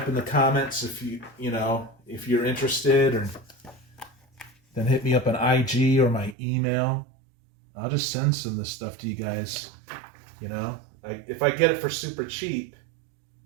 in the comments if if you're interested, or then hit me up on IG or my email. I'll just send some of this stuff to you guys. If I get it for super cheap,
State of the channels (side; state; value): left; drops out; at 6.4 s